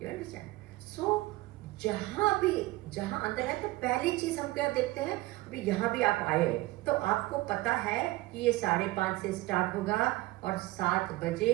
You understand? सो जहां अंदर है तो पहली चीज हम क्या देखते हैं, अभी यहाँ भी आप आए तो आपको पता है कि ये 5:30 से स्टार्ट होगा और 7 बजे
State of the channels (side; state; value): left; quieter; 19.6 dB